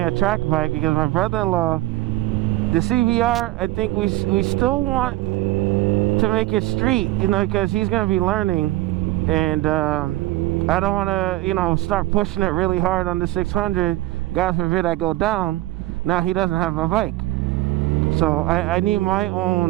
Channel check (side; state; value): left; quieter; 17.6 dB